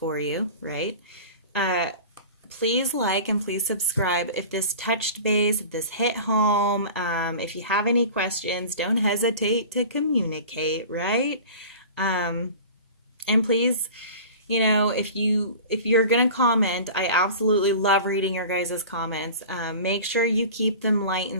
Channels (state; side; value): inverted; both; correlation -0.38